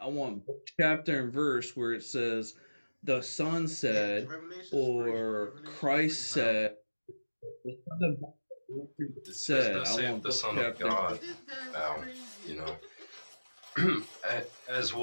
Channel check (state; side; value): inverted; both; correlation -1.00